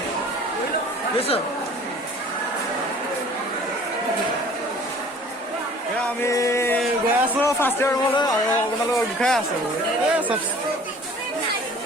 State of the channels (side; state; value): both; normal; correlation 0.49